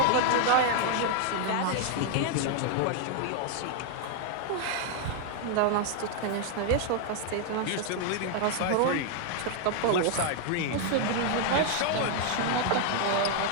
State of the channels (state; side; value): different; both; correlation 0.00